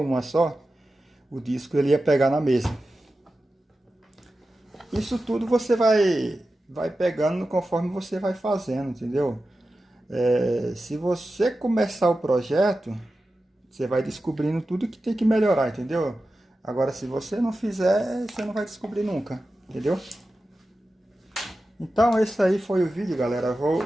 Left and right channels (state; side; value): normal; both; correlation 0.93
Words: só, o disco ele ia pegar na mesa. Isso tudo você vai pegando conforme você vai fazendo, entendeu? Se você começar o projeto, você vai descobrindo tudo que tem que melhorar, entendeu? Agora, se você não fizer, você não vai descobrir nunca, entendeu? Então, esse aí foi o vídeo, galera.